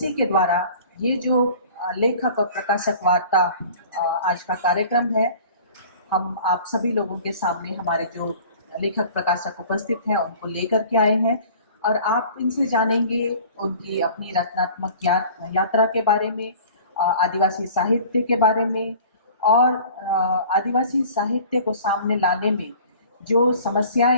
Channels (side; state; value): both; inverted; correlation -0.46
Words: के द्वारा ये जो लेखक और प्रकाशक वार्ता आज का कार्यक्रम है, हम आप सभी लोगों के सामने हमारे जो लेखक प्रकाशक उपस्थित हैं उनको लेकर के आए हैं और आप इनसे जानेंगे उनकी अपनी रचनात्मक यात्रा के बारे में, आदिवासी साहित्य के बारे में और आदिवासी साहित्य को सामने लाने में जो